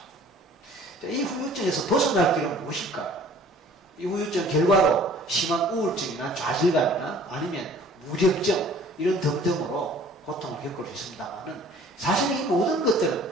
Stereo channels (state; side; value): normal; both; correlation 0.51